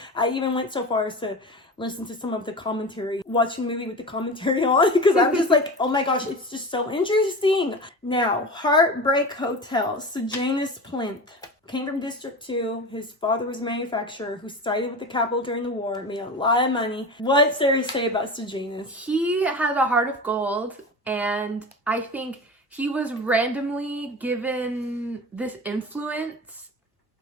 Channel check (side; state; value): both; normal; correlation 0.30